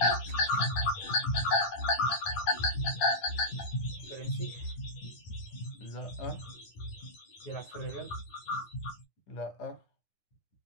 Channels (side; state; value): right; late; 10 ms